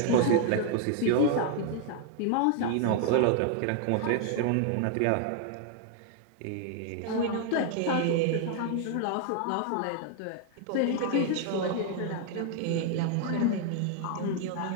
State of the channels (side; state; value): both; different; correlation 0.00